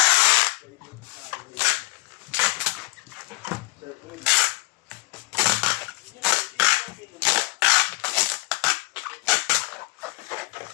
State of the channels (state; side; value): quieter; right; 23.0 dB